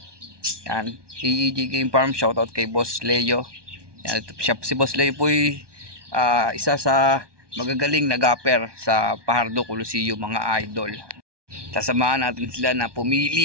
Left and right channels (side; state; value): left; late; 1.2 ms